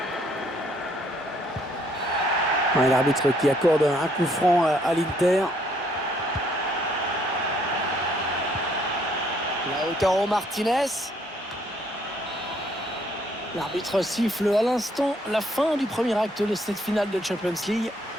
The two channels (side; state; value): both; normal; correlation 0.67